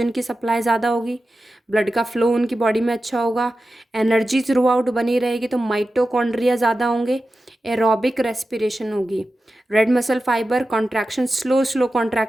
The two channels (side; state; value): both; normal; correlation 0.93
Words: की सप्लाई ज़्यादा होगी, ब्लड का फ्लो उनकी बॉडी में अच्छा होगा, एनर्जी थ्रू आउट बनी रहेगी, तो माइटोकॉन्ड्रिया ज़्यादा होंगे, एरोबिक रेस्पिरेशन होगी। Red muscle fibre contraction, slow slow